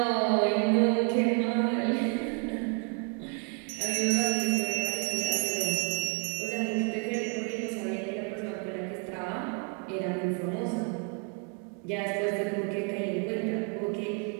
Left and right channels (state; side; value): quieter; left; 37.4 dB